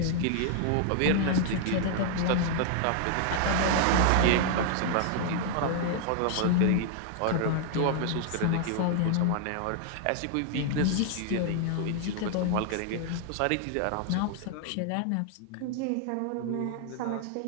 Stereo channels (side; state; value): both; different; correlation 0.00